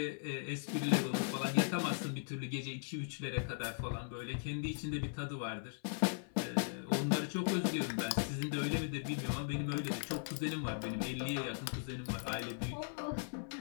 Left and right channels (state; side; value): silent; right; 52 dB below the other